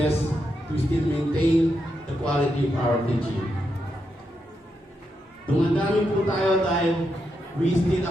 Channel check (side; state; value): both; normal; correlation 0.83